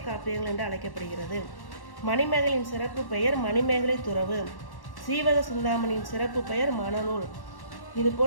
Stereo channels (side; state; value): right; late; 1.1 ms